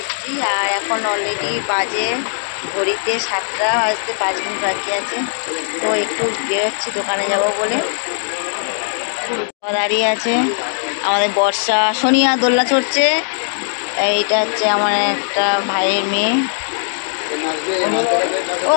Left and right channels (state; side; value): silent; right; digital silence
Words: আর এখন অলরেডি বাজে ঘড়িতে 7টা বাজতে 5 মিনিট বাকি আছে। তো একটু বেরোচ্ছি দোকানে যাব বলে। দাঁড়িয়ে আছে আমাদের বর্ষা, সোনিয়া দোলনা চড়ছে। এইটা হচ্ছে আমার একটা ভাইয়ের মেয়ে। ও